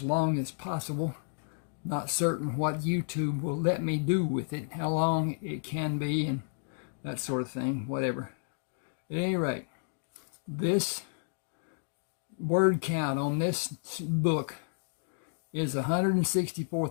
long as possible. Not certain what YouTube will let me do with it, how long it can be, and that sort of thing, whatever. At any rate, this word count on this book is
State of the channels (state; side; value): silent; right; digital silence